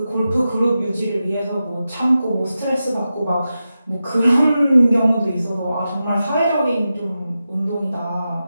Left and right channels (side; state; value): both; inverted; correlation -0.91